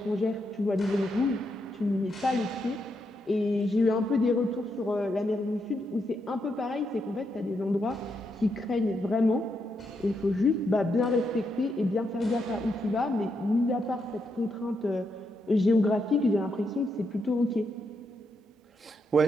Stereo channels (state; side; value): normal; both; correlation 0.81